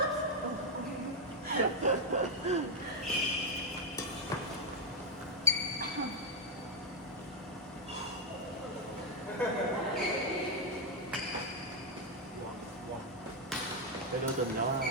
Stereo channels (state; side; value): normal; both; correlation 0.01